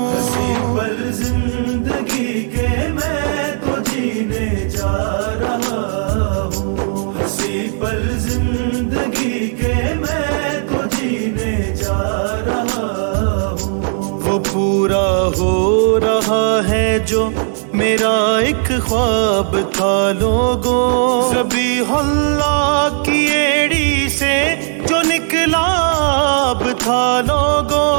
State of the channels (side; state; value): left; silent; digital silence